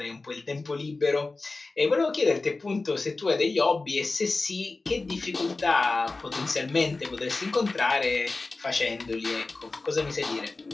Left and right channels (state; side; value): quieter; right; 3.5 dB